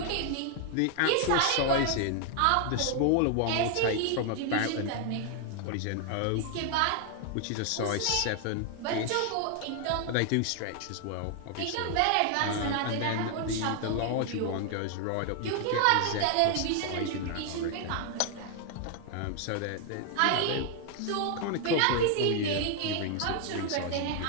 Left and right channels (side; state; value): both; different; correlation 0.00